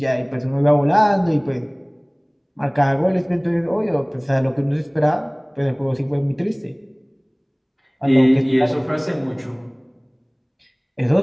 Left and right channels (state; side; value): identical; both; correlation 1.00